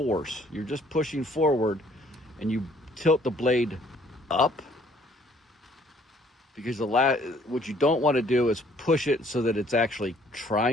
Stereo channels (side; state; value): both; normal; correlation 0.61